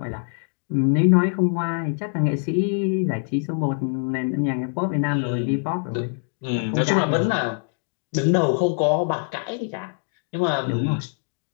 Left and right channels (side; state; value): right; silent; 63 dB below the other